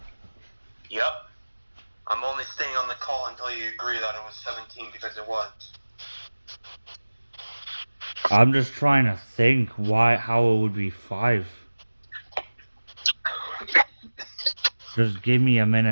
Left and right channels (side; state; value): both; inverted; correlation -1.00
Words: Yep. I'm only staying on the call until you agree that it was 17 because it was. I'm just trying to think how it would be 5. Just give me a